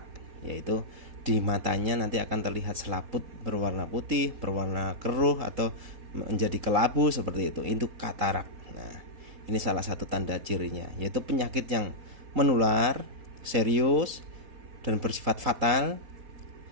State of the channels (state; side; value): late; left; 4.1 ms